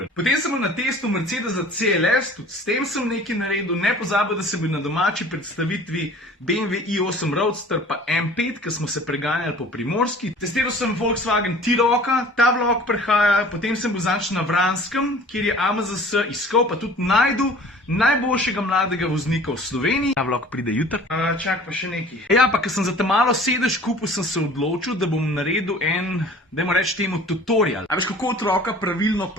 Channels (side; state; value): both; normal; correlation 0.47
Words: Potem sem bil na testu Mercedesa CLS, tudi s tem sem nekaj naredil, ne pozabil, da sem bil na domači predstavitvi BMW i8 Roadster pa M5, ki smo se preganjali po Primorski. Testiral sem Volkswagen T-Rocka, ta vlog prehaja, potem sem bil zanč na Vranskem, kjer je AMZS iskal, pa tudi najdu najboljšega mladega voznika v Sloveniji. Ta vlog pride jutri. Čak pa še nekaj. Ja, pa ker sem za te malo sedež kupil, sem se odločil, da bom naredil en, dajmo reči temu, tutorial. A veš, kako otroka pravilno